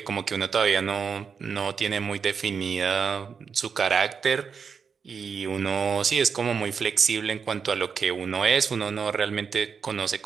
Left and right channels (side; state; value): left; quieter; 6.1 dB